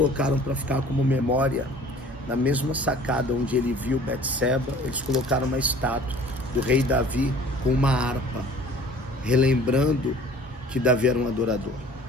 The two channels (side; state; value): both; normal; correlation 0.48